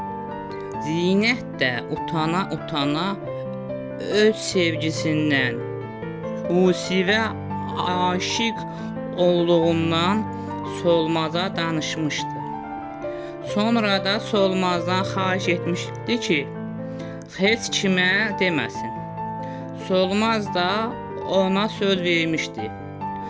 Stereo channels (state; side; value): identical; both; correlation 1.00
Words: Zinət də utana öz sevgisindən, Yusifə aşiq olduğundan Solmaza danışmışdı. Sonra da Solmazdan xahiş etmişdi ki, heç kimə deməsin. Solmaz da ona söz vermişdi.